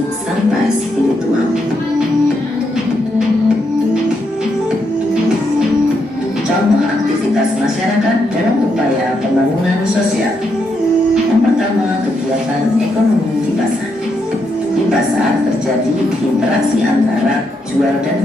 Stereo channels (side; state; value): both; normal; correlation 0.79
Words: sampai spiritual. Contoh aktivitas masyarakat dalam upaya pembangunan sosial. Yang pertama, kegiatan ekonomi di pasar. Di pasar terjadi interaksi antara jual dan